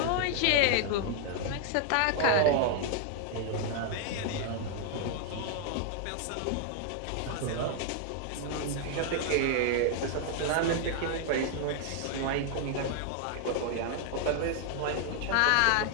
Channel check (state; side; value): different; both; correlation 0.00